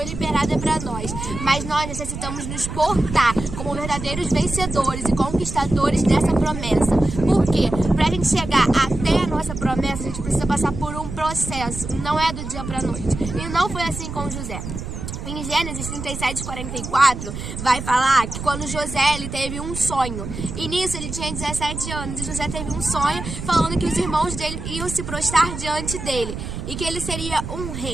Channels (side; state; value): right; noise; rumble, 8 dB below the sound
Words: liberada para nós, mas nós necessitamos nos portar como verdadeiros vencedores e conquistadores dessa promessa. Por quê? Para a gente chegar até a nossa promessa, a gente precisa passar por um processo, não é do dia para a noite. E não foi assim com José. Em Gênesis 37:44 vai falar que quando José ele teve um sonho, e nisso ele tinha 17 anos, e José teve um sonho falando que os irmãos dele iam se prostrar diante dele e que ele seria um